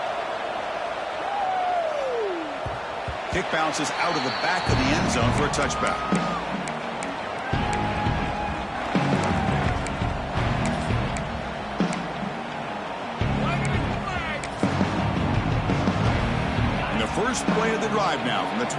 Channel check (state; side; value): identical; both; correlation 1.00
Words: Kick bounces out of the back of the end zone for a touchback. And the first play of the drive now from the